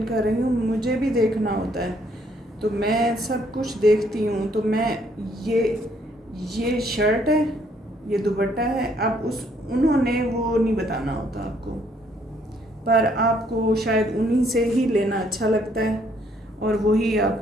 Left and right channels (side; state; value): both; normal; correlation 0.67